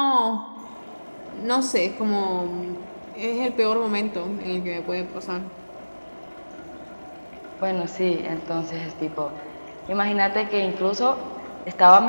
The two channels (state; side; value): inverted; both; correlation -1.00